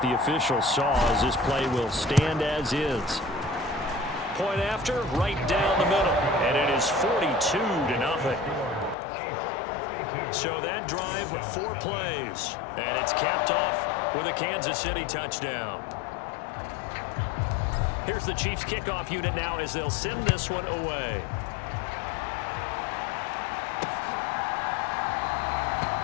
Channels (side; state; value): right; drops out; at 9.0 s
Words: the officials saw, as this play will stand as is. Point after, right down the middle, and it is 42-0. So that drive, 4 plays, and it's capped off with a Kansas City touchdown. Here's the Chiefs kickoff unit now as they'll send this one away.